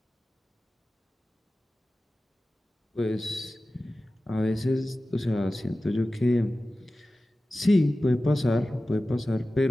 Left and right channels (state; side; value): normal; both; correlation 0.95